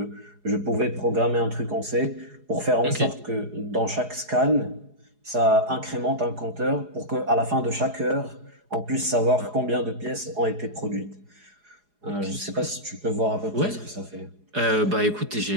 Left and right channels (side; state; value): left; late; 4.8 ms